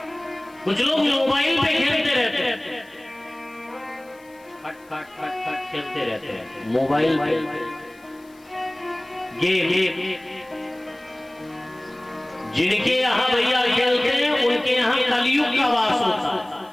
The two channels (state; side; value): noise; left; hiss, 30 dB below the sound